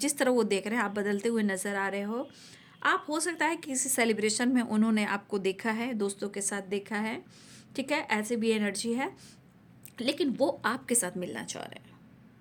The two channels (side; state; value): both; identical; correlation 1.00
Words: तरह वो देख रहे हैं आप बदलते हुए नज़र आ रहे हो। आप हो सकता है किसी सेलिब्रेशन में उन्होंने आपको देखा है, दोस्तों के साथ देखा है, ठीक है, ऐसे भी एनर्जी है, लेकिन वो आपके साथ मिलना चाह रहे हैं।